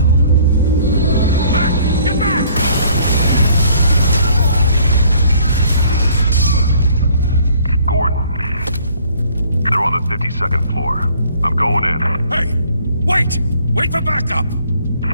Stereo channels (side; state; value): both; inverted; correlation -0.59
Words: Second floor. I'm going in. Hey! Wait! Wait for backup!